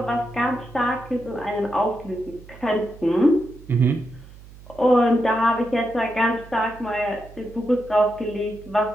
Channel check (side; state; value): right; noise; hum, 19 dB below the sound